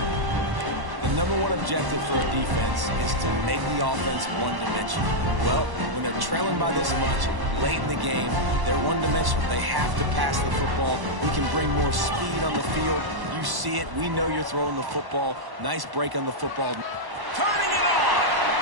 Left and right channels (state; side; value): late; left; 1.1 ms